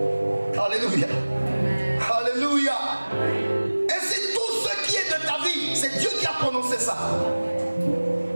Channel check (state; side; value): inverted; both; correlation -1.00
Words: Alléluia. Alléluia. Et c'est tout ce qui est de ta vie, c'est Dieu qui a prononcé ça.